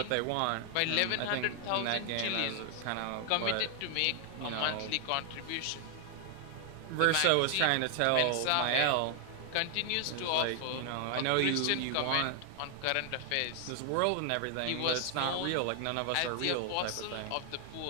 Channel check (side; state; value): both; different; correlation 0.00